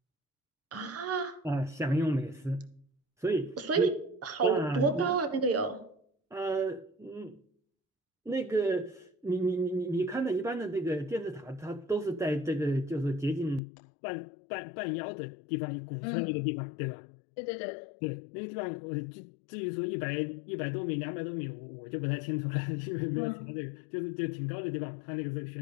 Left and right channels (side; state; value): right; drops out; at 13.6 s